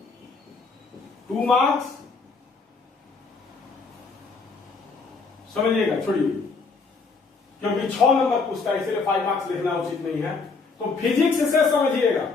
टू मार्क्स, समझिएगा, छोड़िए, क्योंकि 6 नंबर पूछता है इसलिए 5 मार्क्स लिखना उचित नहीं है। तो फिजिक्स से समझिएगा,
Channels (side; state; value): right; quieter; 4.4 dB